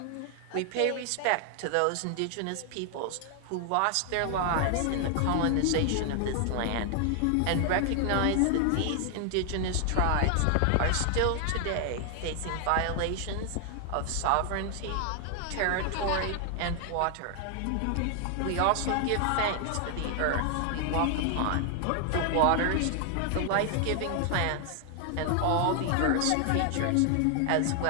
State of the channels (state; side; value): different; both; correlation 0.00